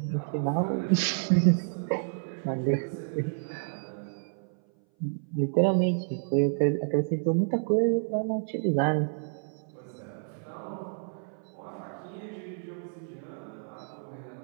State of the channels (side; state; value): left; silent; 58 dB below the other